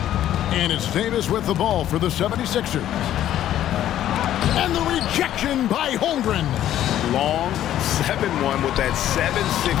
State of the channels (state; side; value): quieter; right; 12.0 dB